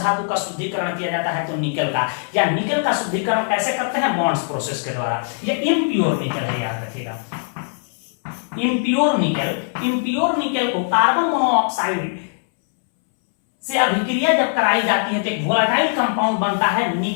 का शुद्धिकरण किया जाता है, तो निकेल का। या निकेल का शुद्धिकरण कैसे करते हैं? मॉन्स प्रोसेस के द्वारा। ये इम्प्योर निकेल है, याद रखिएगा। इम्प्योर निकेल को कार्बन मोनोऑक्साइड से अभिक्रिया जब कराई जाती है तो एक वोलाटाइल कंपाउंड बनता है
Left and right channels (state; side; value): silent; right; 65 dB below the other